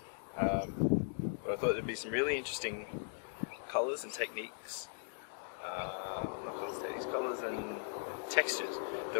But I thought there'd be some really interesting colours and techniques, colours and textures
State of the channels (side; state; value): right; silent; digital silence